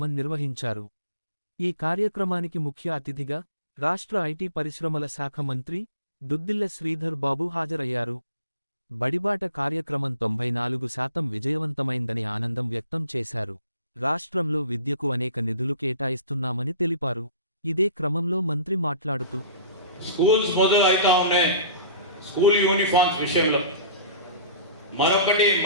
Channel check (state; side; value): inverted; both; correlation -0.45